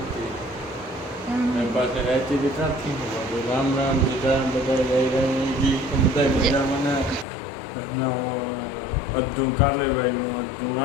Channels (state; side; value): drops out; right; at 7.2 s